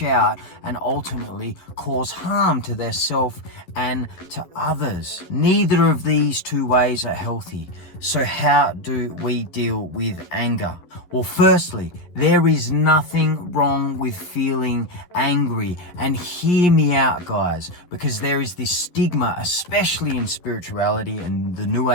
out and ultimately cause harm to their self and to others. Neither of these two ways are healthy. So how do we deal with anger? Well, firstly, there is nothing wrong with feeling angry. And hear me out, guys, because there is this stigma, especially in spirituality and the New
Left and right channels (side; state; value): right; late; 11 ms